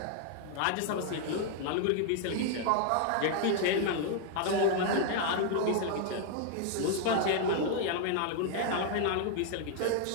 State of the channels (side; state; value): both; different; correlation 0.00